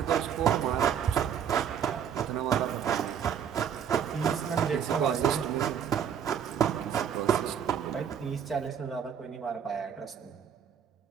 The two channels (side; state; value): left; quieter; 8.3 dB